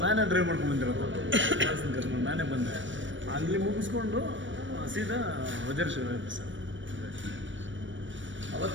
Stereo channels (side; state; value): left; late; 0.55 ms